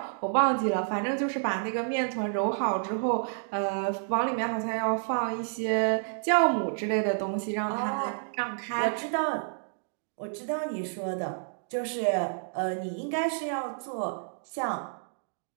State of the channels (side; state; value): left; silent; digital silence